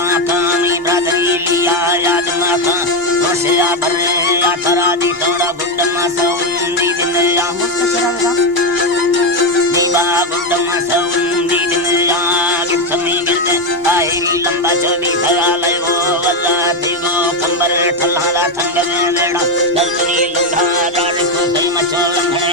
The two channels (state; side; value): normal; both; correlation 0.08